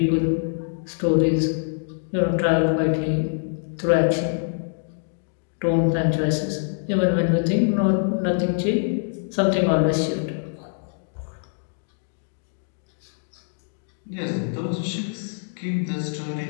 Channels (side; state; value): right; silent; digital silence